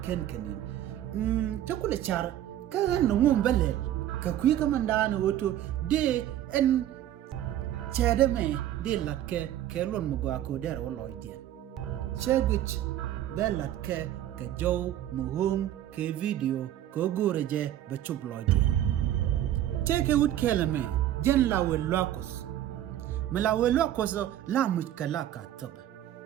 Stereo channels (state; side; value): quieter; left; 12.1 dB